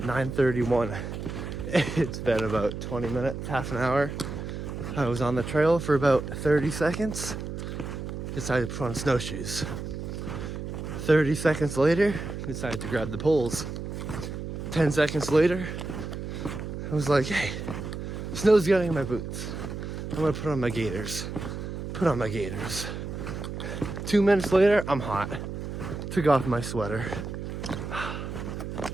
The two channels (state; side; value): noise; right; hum, 6 dB below the sound